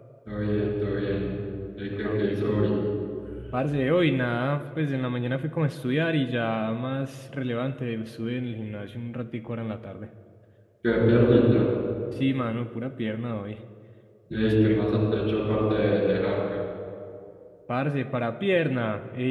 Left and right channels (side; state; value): both; identical; correlation 1.00